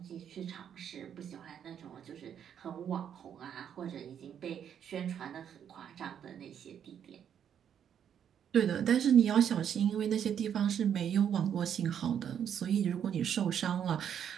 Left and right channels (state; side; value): quieter; left; 8.8 dB